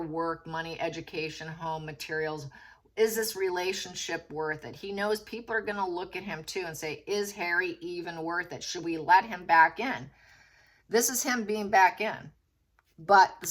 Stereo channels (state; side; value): identical; both; correlation 1.00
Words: work, money, education, home, materials. Is this relationship worth it? He knows people are going to look at him too and say, is Harry even worth it? Should we let him back in? This is him being back in. But the